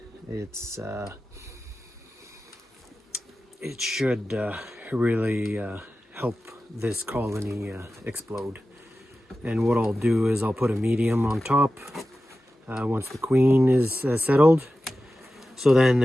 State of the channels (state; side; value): normal; both; correlation 0.94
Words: it should really help this colony explode. And what I'll do is I'll put a medium on top once the queen is settled. So then